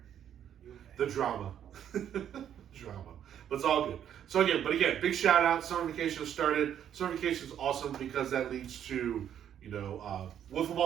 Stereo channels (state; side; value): quieter; left; 9.7 dB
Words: The drama. Drama. But it's all good. So again, big shout out. Summer vacation has started. Summer vacation is awesome because that leads to, Wood